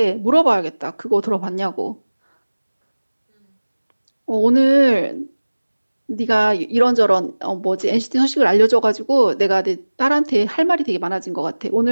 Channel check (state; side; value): inverted; both; correlation -1.00